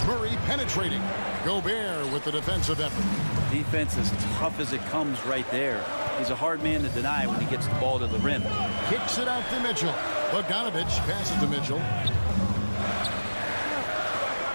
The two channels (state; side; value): inverted; both; correlation -1.00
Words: Murray penetrating. Gobert with the defensive effort. Defense as tough as it comes right there. He's a hard man to deny when he gets the ball to the rim. Kicks it out to Mitchell. Bogdanovich passes to Mitchell.